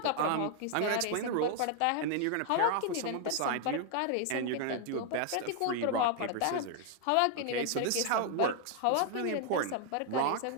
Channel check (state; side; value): different; both; correlation 0.00